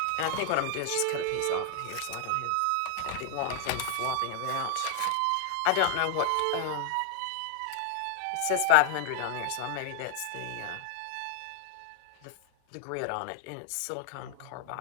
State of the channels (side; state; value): both; different; correlation -0.01